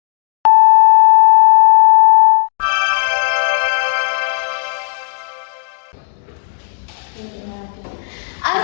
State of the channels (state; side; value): silent; right; digital silence